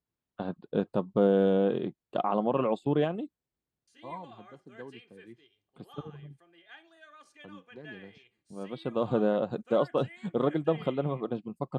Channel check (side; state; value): both; identical; correlation 1.00